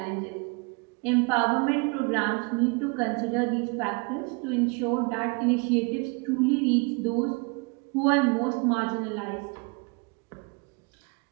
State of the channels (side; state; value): left; quieter; 31.3 dB